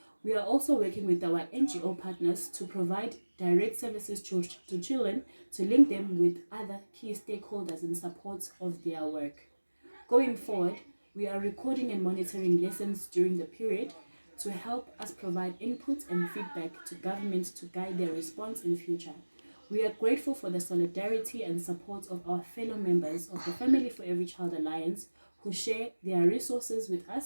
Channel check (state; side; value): inverted; both; correlation -1.00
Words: We are also working with our NGO partners to provide direct services to children to link them with other key stakeholders in support of their work. Going forward, we are recording and monitoring lessons during the period to help us provide input and feedback to government to guide their response in future. We are grateful for the solidarity and support of our fellow members of the Family for Every Child Alliance who share their resources with